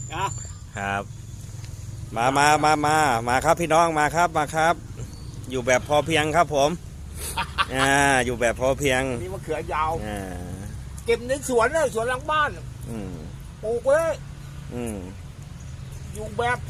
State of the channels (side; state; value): both; identical; correlation 1.00